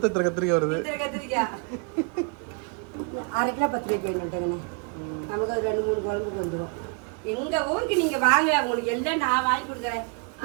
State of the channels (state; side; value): quieter; left; 35.6 dB